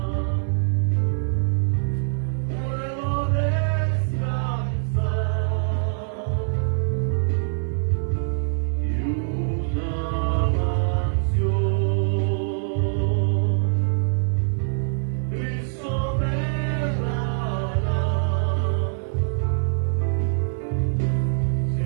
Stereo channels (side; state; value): left; silent; 63 dB below the other